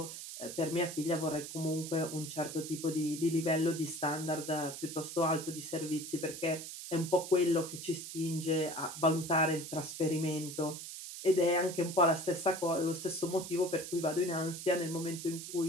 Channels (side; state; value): right; noise; hiss, 9 dB below the sound